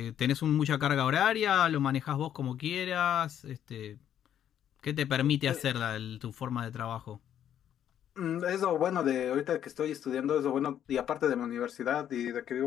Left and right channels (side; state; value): right; quieter; 10.1 dB